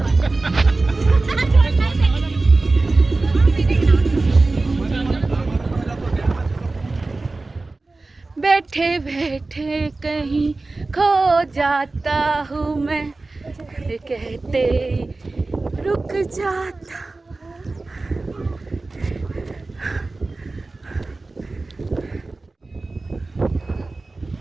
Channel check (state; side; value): quieter; left; 3.4 dB